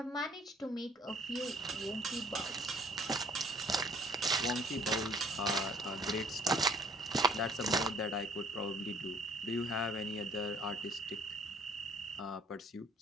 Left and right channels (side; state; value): both; normal; correlation 0.58